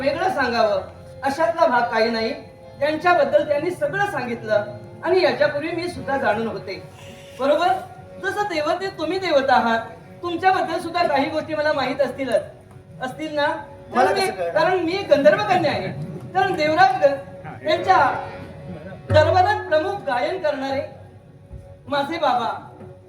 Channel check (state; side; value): identical; both; correlation 1.00